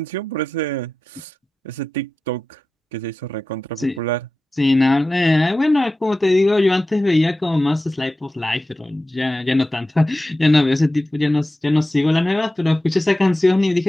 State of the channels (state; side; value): normal; both; correlation 0.93